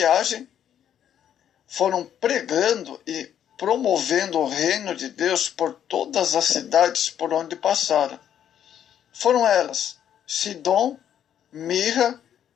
foram pregando e promovendo o reino de Deus por todas as cidades por onde passaram. Foram elas Sidom, Mirra,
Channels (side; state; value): right; quieter; 9.8 dB